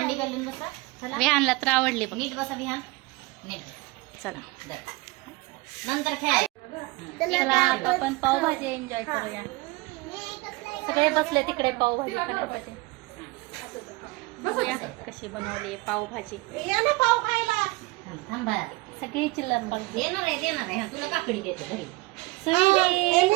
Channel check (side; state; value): left; quieter; 23.0 dB